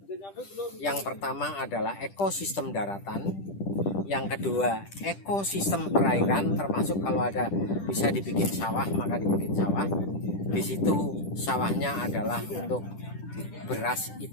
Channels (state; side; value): late; right; 10 ms